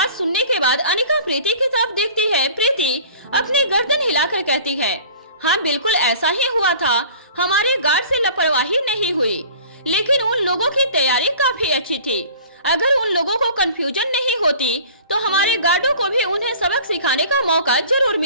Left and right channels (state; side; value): inverted; both; correlation -0.46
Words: सुनने के बाद अनिका प्रीति की तरफ देखती है। प्रीति अपनी गर्दन हिलाकर कहती है, हाँ बिल्कुल ऐसा ही हुआ था। हमारे गार्ड से लापरवाही नहीं हुई, लेकिन उन लोगों की तैयारी काफी अच्छी थी। अगर उन लोगों को कंफ्यूजन नहीं होती तो हमारे गार्डों को भी उन्हें सबक सिखाने का मौका जरूर